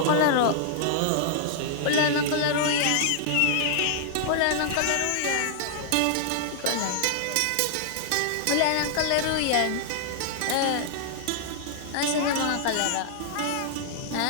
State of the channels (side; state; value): both; different; correlation -0.01